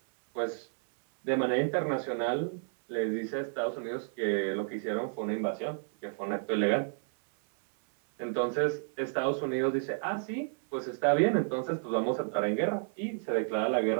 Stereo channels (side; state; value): left; silent; 57 dB below the other